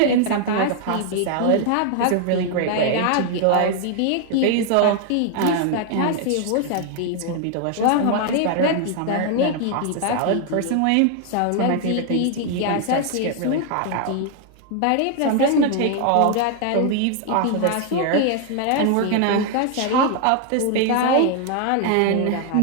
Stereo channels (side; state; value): both; different; correlation 0.00